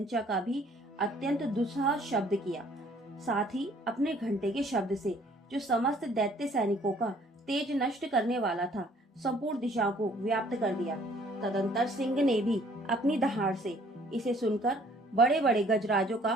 का भी अत्यंत दुस्सह शब्द किया। साथ ही अपने घंटे के शब्द से, जो समस्त दैत्य सैनिकों का तेज नष्ट करने वाला था, संपूर्ण दिशाओं को व्याप्त कर दिया। तदंतर सिंह ने भी अपनी दहाड़ से इसे सुनकर बड़े बड़े गजराजों का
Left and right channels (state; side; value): normal; both; correlation 0.59